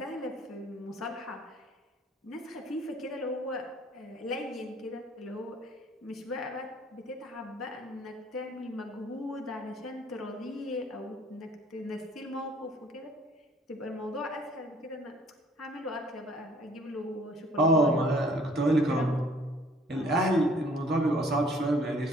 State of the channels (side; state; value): both; normal; correlation 0.57